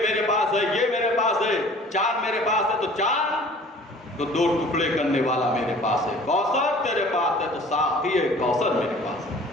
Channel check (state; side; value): normal; both; correlation 0.48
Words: پاس ہے، یہ میرے پاس ہے، چاند میرے پاس ہے، تو چاند تو دو ٹکڑے کرنے والا میرے پاس ہے، کوثر تیرے پاس ہے تو ساقی کوثر میرے پاس ہے۔